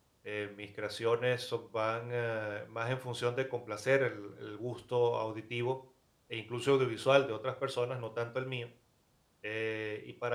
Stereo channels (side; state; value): both; identical; correlation 1.00